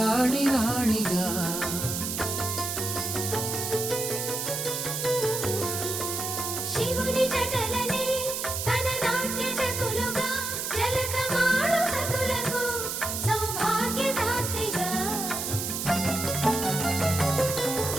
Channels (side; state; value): right; noise; hiss, 3 dB below the sound